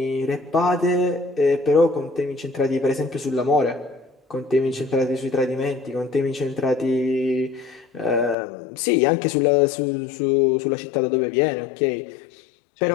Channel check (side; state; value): right; drops out; at 8.3 s